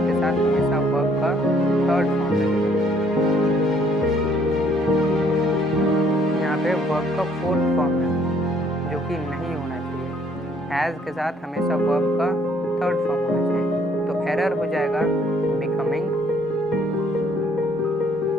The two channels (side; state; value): both; normal; correlation 0.63